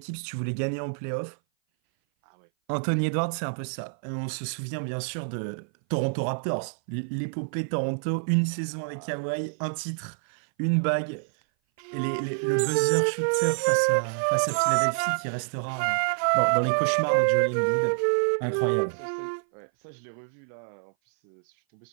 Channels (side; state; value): left; silent; 58 dB below the other